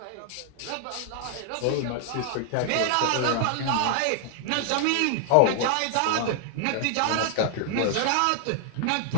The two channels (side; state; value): both; different; correlation -0.01